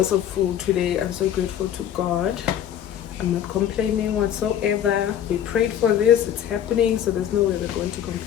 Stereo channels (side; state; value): right; quieter; 10.1 dB